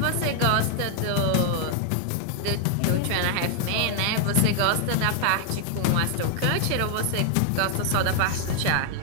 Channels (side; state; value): both; different; correlation 0.00